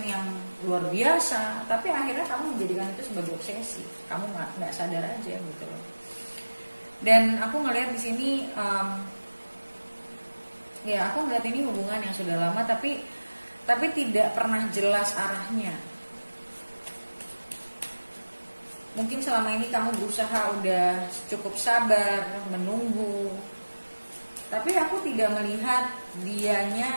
yang luar biasa, tapi akhirnya kamu menjadikan itu sebagai obsesi. Kamu nggak sadar aja gitu loh. Dan aku ngelihat di sini, ya aku ngelihat ini hubungan yang sudah lama, tapi tidak pernah jelas arahnya. Mungkin selama ini kamu berusaha udah cukup sabar, menunggu. Tapi aku tidak melihat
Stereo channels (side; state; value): both; inverted; correlation -1.00